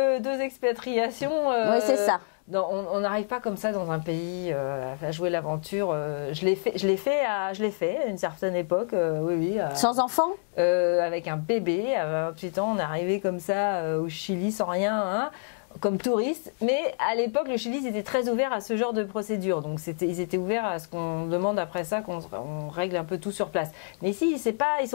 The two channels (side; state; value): right; silent; digital silence